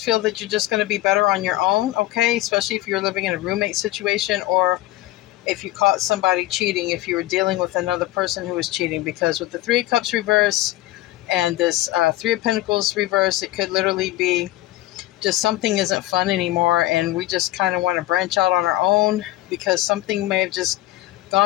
that you're just going to be better on your own, okay, especially if you're living in a roommate situation, or if you caught somebody cheating, if you were dealing with another person who was cheating, because with the Three of Cups reverse and this Three of Pentacles reverse, it could literally be just something isn't fun anymore, and we just kind of want to branch out on our own because something may have just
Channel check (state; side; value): quieter; right; 16.5 dB